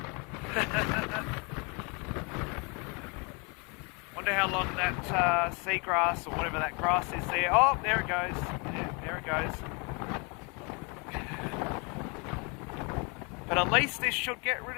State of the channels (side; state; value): right; quieter; 31.9 dB